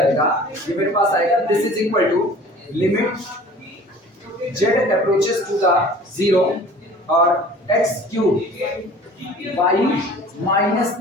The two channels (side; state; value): both; normal; correlation 0.46